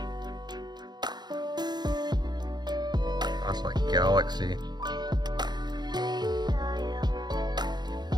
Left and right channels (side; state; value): left; late; 0.21 ms